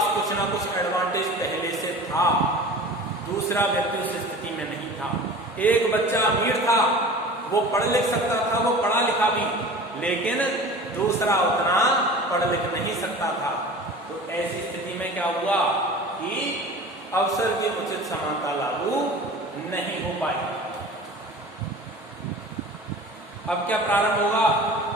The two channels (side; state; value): both; normal; correlation 0.39